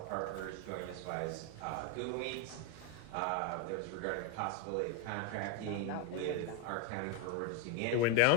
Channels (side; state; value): both; different; correlation 0.01